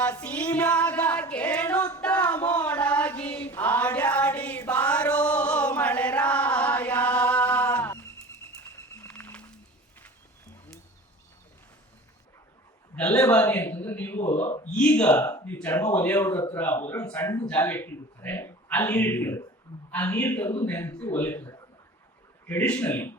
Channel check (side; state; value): both; normal; correlation 0.40